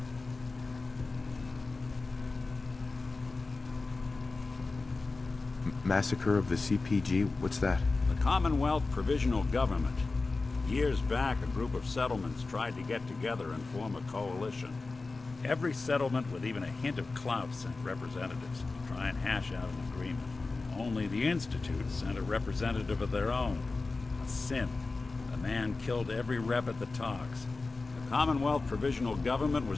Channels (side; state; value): right; quieter; 3.7 dB